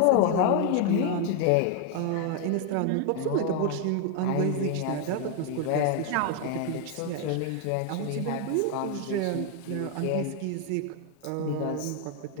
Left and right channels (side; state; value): both; different; correlation 0.00